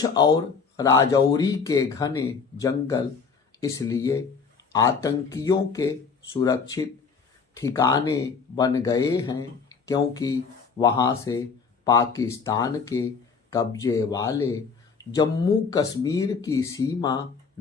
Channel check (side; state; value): right; quieter; 5.3 dB